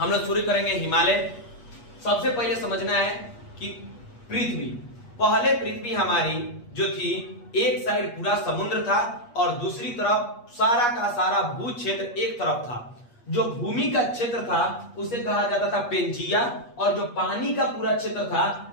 लोग शुरू करेंगे हिमालय। सबसे पहले समझना है कि पृथ्वी हमारी जो थी, एक साइड पूरा समुद्र था और दूसरी तरफ सारा का सारा भू क्षेत्र एक तरफ था। जो भूमि का क्षेत्र था उसे कहा जाता था पेंजिया और जो पानी का पूरा क्षेत्र था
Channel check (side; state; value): right; late; 8.4 ms